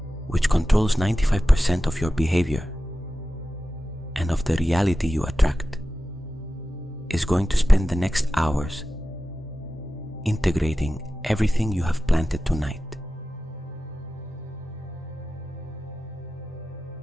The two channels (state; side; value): normal; both; correlation 0.94